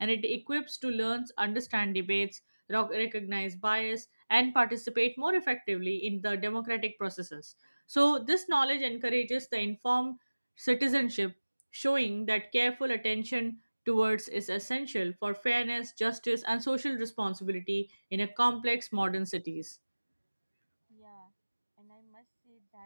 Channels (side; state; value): both; inverted; correlation -1.00